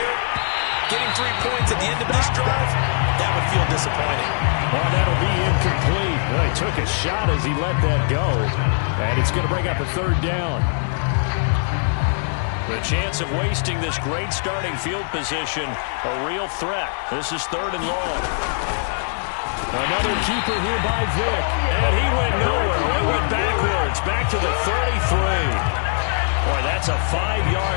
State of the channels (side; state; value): right; silent; digital silence